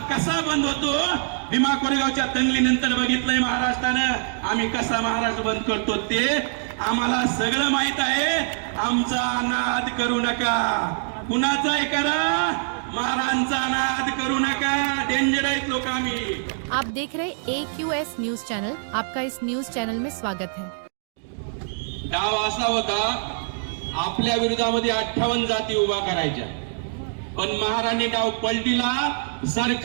कसा बंद होतो. भीमा कोरेगावच्या दंगलीनंतर बघितलंय महाराष्ट्रानं आम्ही कसा महाराष्ट्र बंद करतो ते आम्हाला सगळं माहित आहे. आमचा नाद करू नका. कुणाचाही करा, महाराजांचा नाद करू नका. डेंजर आहेत लोक आम्ही. आप देख रहे AQS न्यूज चैनल. आपका इस न्यूज चैनल में स्वागत है. डाव असा होता, आपल्या विरोधामध्ये 58 जाती उभा करायच्या, पण महाराणी डाव पलटीला.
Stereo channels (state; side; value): silent; left; digital silence